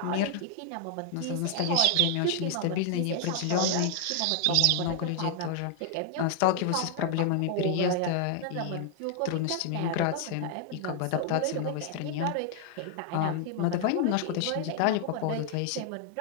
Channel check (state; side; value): different; both; correlation 0.00